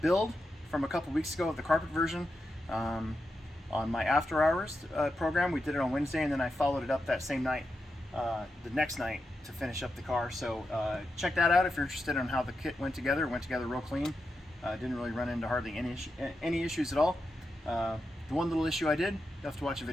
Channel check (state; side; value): normal; both; correlation 0.87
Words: build from a couple weeks ago of the carpet version on my after hours program. We did it on Wednesday, and then I followed it up that same night, the next night, to finish up the car. So check that out if you're interested in how the kit went together. It went together real clean. Didn't really run into hardly any issues at all. The one little issue I did, you have to watch a